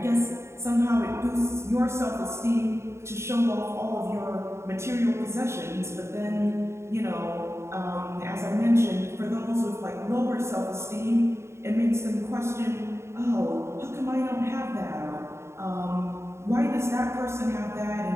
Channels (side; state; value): left; late; 0.13 ms